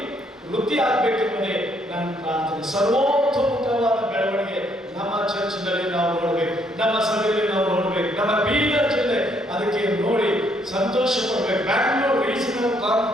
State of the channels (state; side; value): normal; both; correlation 0.69